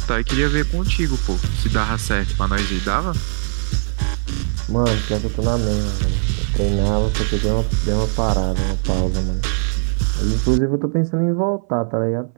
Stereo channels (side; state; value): left; silent; 59 dB below the other